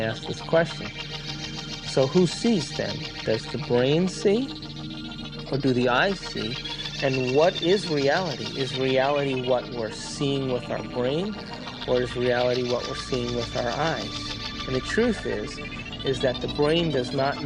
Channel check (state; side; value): identical; both; correlation 1.00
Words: this question. So who sees then? Does the brain see? Or do the eyes see? And what is reality? Is reality what we're seeing with our brain? Or is reality what we're seeing with our eyes? And the truth is that the brain does not